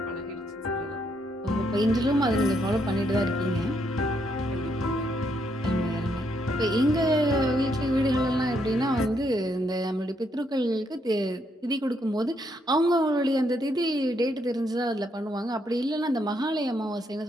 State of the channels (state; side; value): normal; both; correlation 0.75